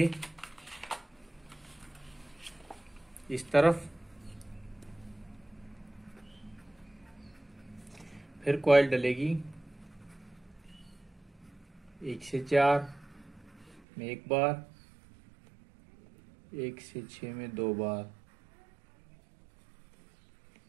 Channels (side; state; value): left; drops out; at 13.8 s